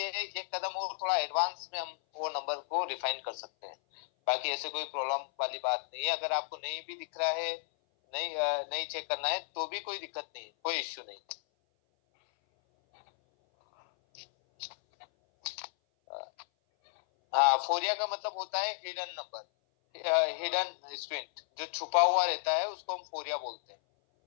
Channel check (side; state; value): right; silent; 56 dB below the other